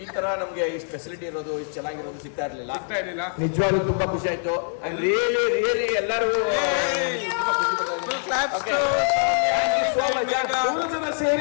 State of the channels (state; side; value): silent; right; digital silence